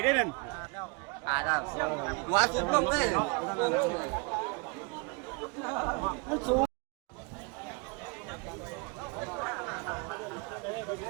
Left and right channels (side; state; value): left; quieter; 30.2 dB